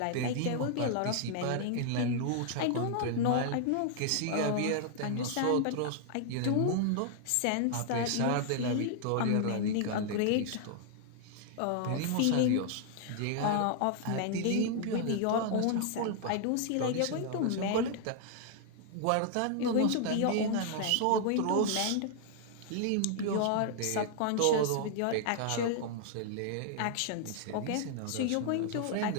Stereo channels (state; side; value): different; both; correlation 0.00